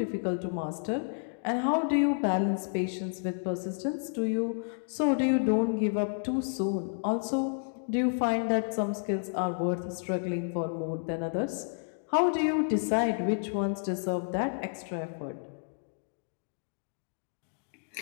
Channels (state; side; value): silent; right; digital silence